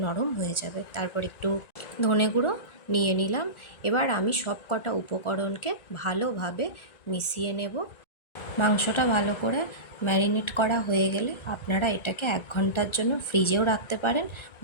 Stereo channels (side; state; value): right; late; 1.4 ms